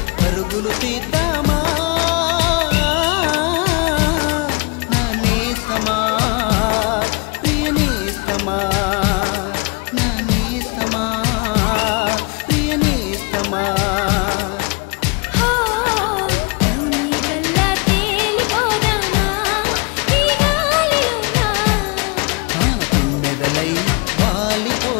పరుగులు తీద్దామా నా నేస్తమా ప్రియ నేస్తమా నా నేస్తమా ప్రియ నేస్తమా మెదలై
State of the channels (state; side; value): quieter; right; 30.9 dB